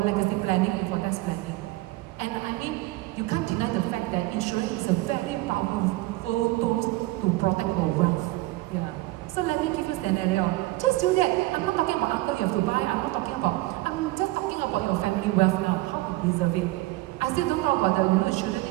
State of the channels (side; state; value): left; quieter; 19.4 dB